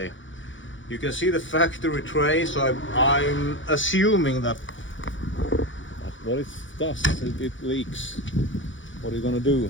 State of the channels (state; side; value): late; right; 0.56 ms